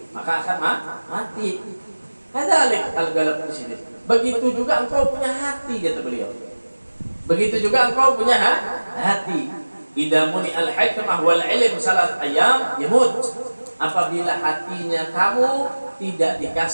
maka akan mati. Kadzalik al-galab di sini. Begitu juga engkau punya hati, kata beliau. Begitu juga engkau punya hati. Idza muni al-hikmah wal ilm salat ayam yamut. Apabila hatinya kamu tidak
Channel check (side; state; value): both; inverted; correlation -1.00